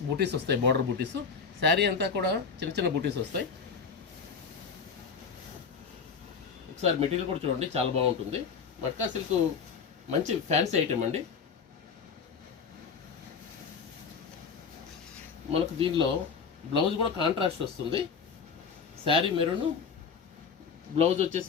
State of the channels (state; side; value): quieter; right; 5.8 dB